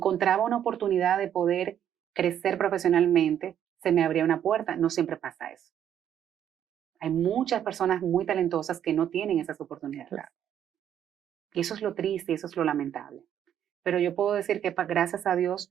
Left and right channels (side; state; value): left; quieter; 9.9 dB